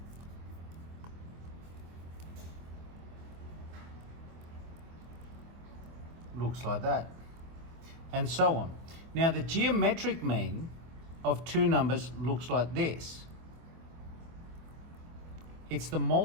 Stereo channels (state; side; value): late; left; 24 ms